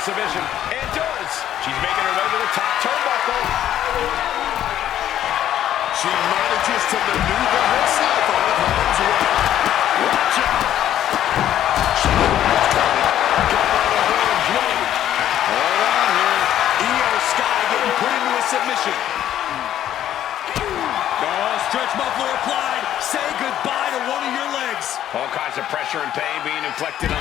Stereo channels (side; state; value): right; quieter; 11.5 dB